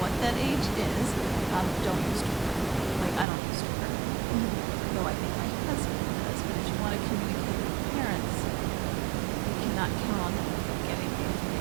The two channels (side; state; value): left; drops out; at 3.2 s